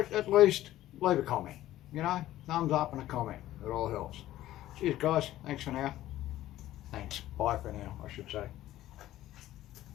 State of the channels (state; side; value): quieter; right; 14.3 dB